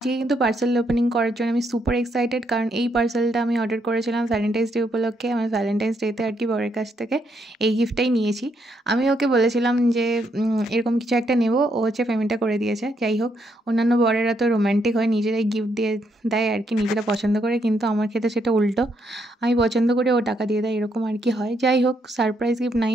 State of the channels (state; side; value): normal; both; correlation 0.76